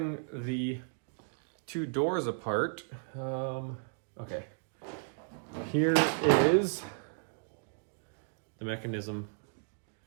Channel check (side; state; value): left; silent; digital silence